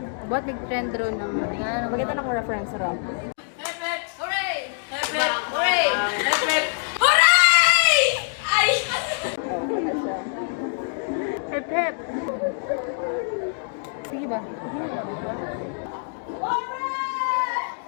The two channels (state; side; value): silent; right; 62 dB below the other